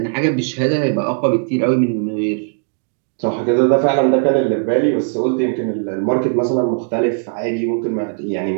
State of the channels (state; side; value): silent; left; digital silence